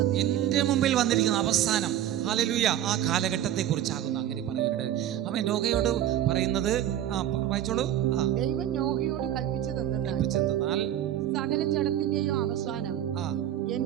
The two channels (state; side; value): quieter; left; 11.6 dB